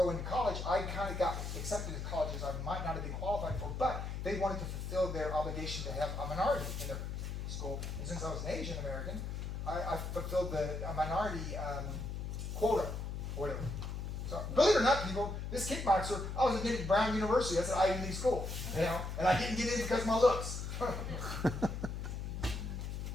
to college, I kind of got accepted to colleges I might not have been qualified for, but they wanted to fulfill their obligation to have a minority in their school. And since I was an Asian American, I fulfilled a minority quota, or whatever. So, believe it or not, people, this kickboxer, I was admitted to Brown University. That's an Ivy League school, and I didn't get in because of my looks.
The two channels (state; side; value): noise; left; hum, 4 dB below the sound